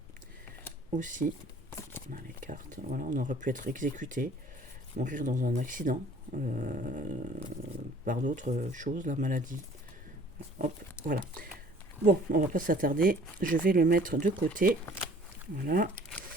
aussi. On a les cartes, voilà, on aurait pu être exécuté, mourir dans un accident, par d'autres choses, la maladie. Hop, voilà. Bon, on va pas s'attarder, je vais le mettre de côté. Voilà.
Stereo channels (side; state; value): both; normal; correlation 0.52